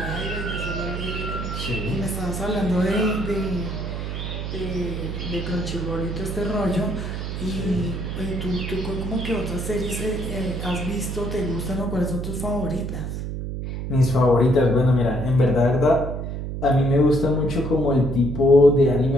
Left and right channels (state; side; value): noise; right; hum, 5 dB below the sound